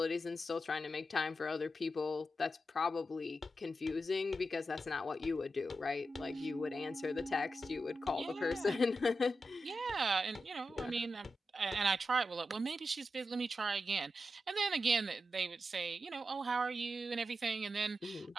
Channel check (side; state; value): both; normal; correlation 0.89